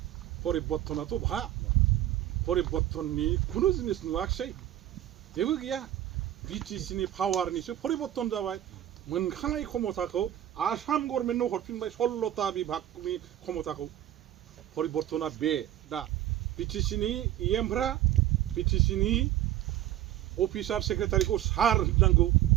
परिबर्तनाथ' बहा परिबर्तननि खुनु जिनिस नुवाखिसै जेबो गैया BTC नि पावारनिसो परिबर्तन जाबाय मोनखानाय क्षमताखौ आसाम गभर्नमेन्टनो हरफिनबाय 16टा बिभागनि क्षमताखौ परिबर्तना बे दा BTC नि EMफ्रा BTC नि अफिसार सेक्रेटारिखौ सार होननांगौ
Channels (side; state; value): left; quieter; 12.7 dB